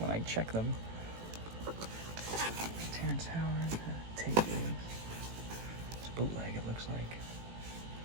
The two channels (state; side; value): late; left; 18 ms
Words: I check them. Terrence Howard. Take it. It's bootleg, it looks like.